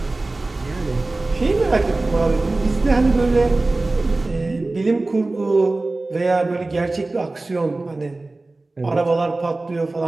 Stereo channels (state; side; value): quieter; left; 3.1 dB